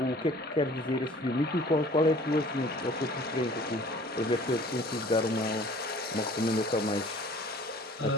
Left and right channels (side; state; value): both; normal; correlation 0.49